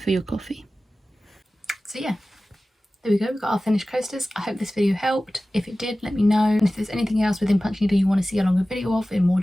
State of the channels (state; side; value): normal; both; correlation 0.96